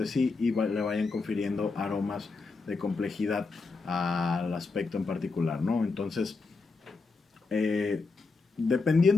sí y le vayan confiriendo aromas de complejidad al aspecto en particular, ¿no? Entonces,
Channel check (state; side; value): quieter; right; 4.1 dB